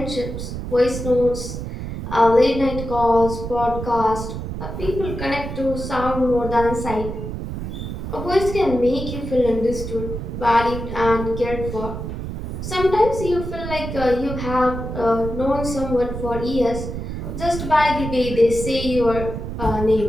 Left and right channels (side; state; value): right; noise; rumble, 6 dB below the sound